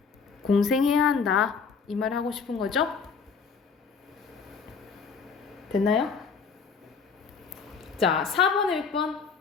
공생해야 한다. 이 말 하고 싶은 거죠? 됐나요? 자, 4번에 몇 번?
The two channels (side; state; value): right; quieter; 5.5 dB